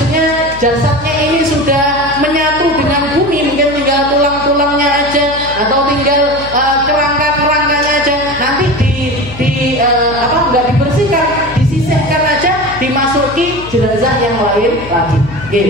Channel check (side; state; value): left; noise; hum, 15 dB below the sound